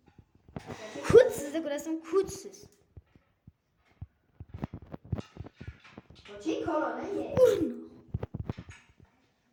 Kuchsiz ko'rasam, kuchsiz. Qo'ching korona ye.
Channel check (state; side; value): identical; both; correlation 1.00